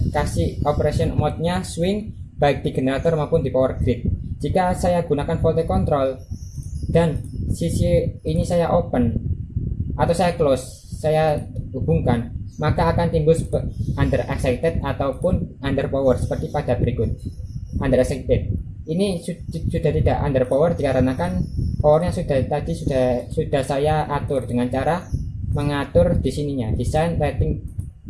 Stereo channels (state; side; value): identical; both; correlation 1.00